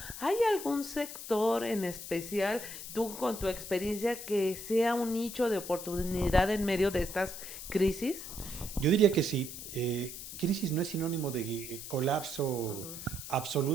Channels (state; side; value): noise; left; hiss, 10 dB below the sound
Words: ¿Hay algún sector en especial, tú con tu experiencia, que sea un nicho de oportunidad en medio de estas crisis? Yo diría que sí. Crisis no es sinónimo de colapso Ujú.